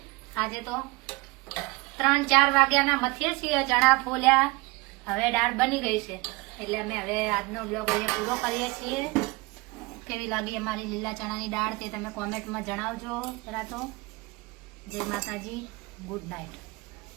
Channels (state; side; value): quieter; left; 24.6 dB